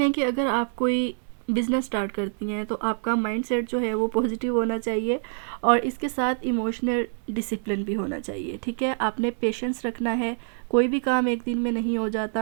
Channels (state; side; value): silent; left; digital silence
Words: कि अगर आप कोई बिज़नेस स्टार्ट करती हैं तो आपका माइंडसेट जो है वो पॉजिटिव होना चाहिए, और इसके साथ इमोशनल डिसिप्लिन भी होना चाहिए, ठीक है। आपने पेशेंस रखना है, कोई भी काम एक दिन में नहीं हो